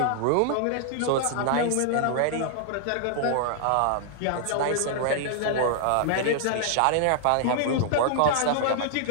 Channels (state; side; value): different; both; correlation 0.00